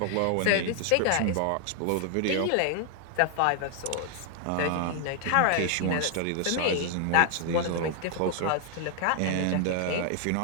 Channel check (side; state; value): both; different; correlation 0.00